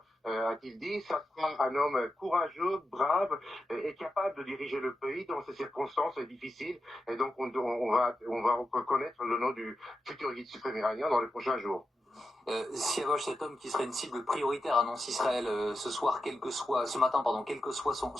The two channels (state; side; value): normal; both; correlation 0.89